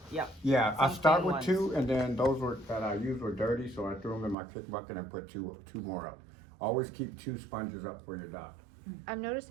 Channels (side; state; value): left; drops out; at 4.4 s